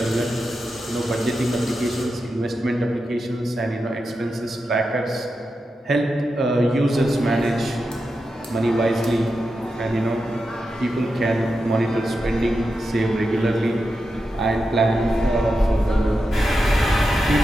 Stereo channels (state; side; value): normal; both; correlation 0.89